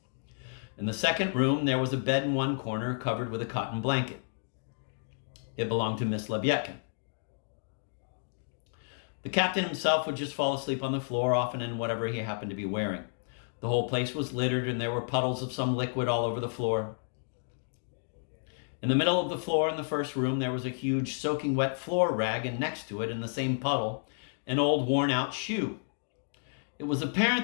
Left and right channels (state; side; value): silent; right; digital silence